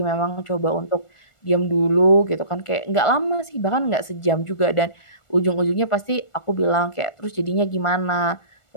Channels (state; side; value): late; right; 1.4 ms